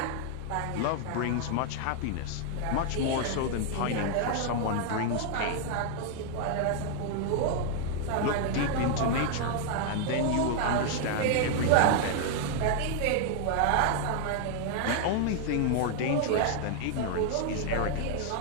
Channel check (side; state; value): both; different; correlation 0.00